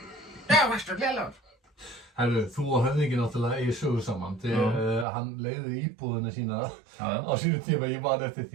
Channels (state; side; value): drops out; left; at 5.1 s